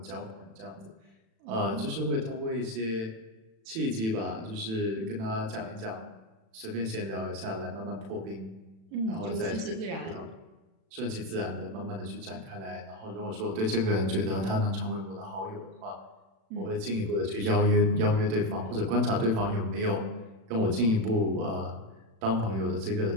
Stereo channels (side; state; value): left; late; 36 ms